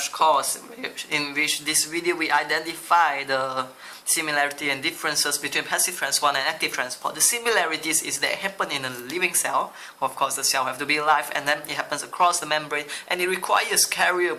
course, in which this video we identify the similarity and differences between passive transport and active transport. The similarities is they happen in a living cell. Of course, the cell have to be alive, and then it happens across the membrane, and it requires carrier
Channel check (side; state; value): both; identical; correlation 1.00